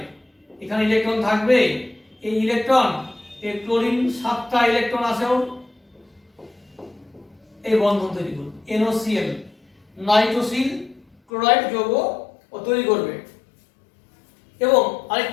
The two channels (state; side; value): drops out; right; at 11.2 s